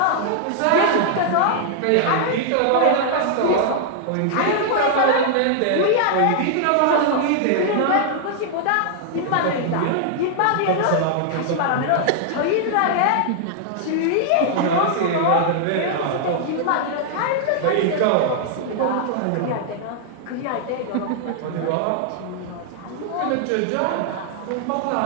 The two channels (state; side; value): different; both; correlation -0.01